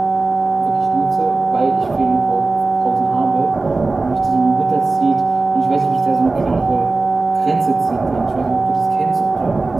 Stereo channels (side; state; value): left; quieter; 3.5 dB